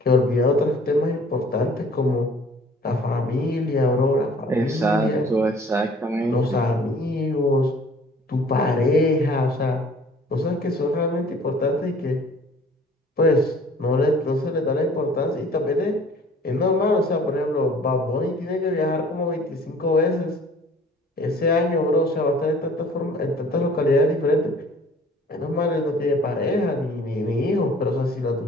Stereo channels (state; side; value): normal; both; correlation 0.51